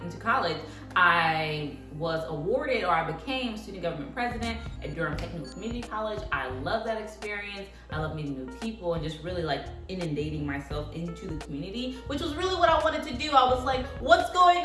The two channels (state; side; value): identical; both; correlation 1.00